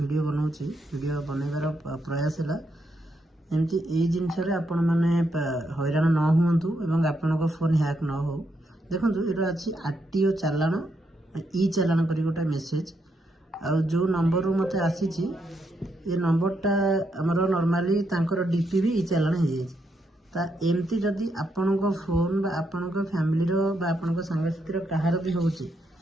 बनाऊँच वीडियो बनइबार प्रयास है एमती यही जिनस आपण मैंने हैरान न हूँ एवं आपण फोन हैक न हो। देखो ये अच्छी आरटीओ चालाण ई चालाण कर गोटे मेसेज और जो नंबर मत आसी ये नंबरटा आमर नॉर्मली तांकर डीपी भी ई चालाण हो जाए एमती जदि आपण फोन बा आपण फैमिली बा आपण सांगसाथी कहार भी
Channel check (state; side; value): normal; both; correlation 0.79